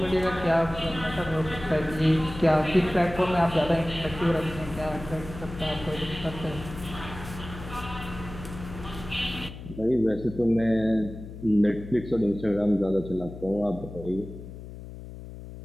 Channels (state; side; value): noise; left; hum, 13 dB below the sound